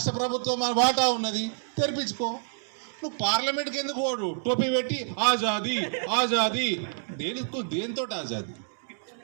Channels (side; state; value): left; silent; digital silence